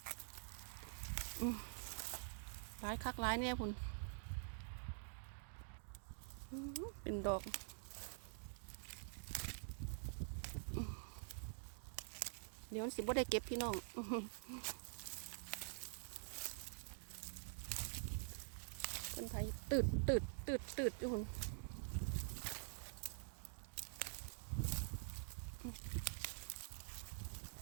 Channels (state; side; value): silent; left; digital silence